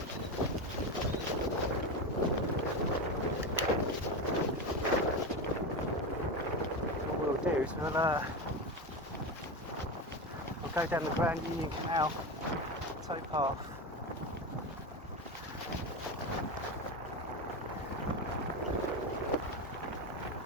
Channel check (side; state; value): both; normal; correlation 0.18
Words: What we'll do is we'll go down the Grand Union Canal towpath.